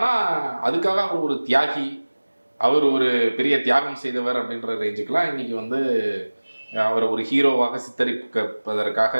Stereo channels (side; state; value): both; inverted; correlation -1.00